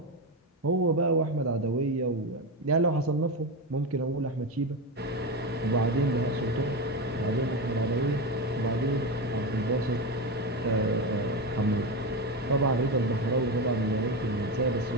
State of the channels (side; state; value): both; normal; correlation 0.16